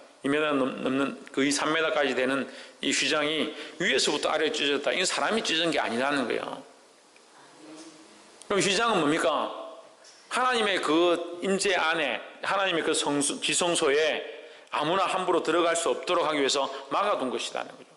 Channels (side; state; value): both; identical; correlation 1.00